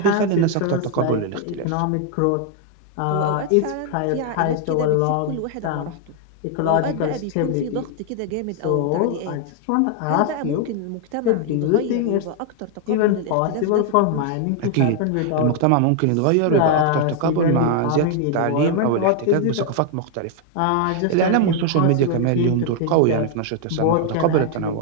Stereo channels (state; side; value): different; both; correlation 0.00